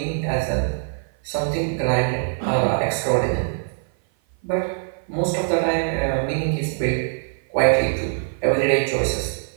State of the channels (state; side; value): silent; left; 55 dB below the other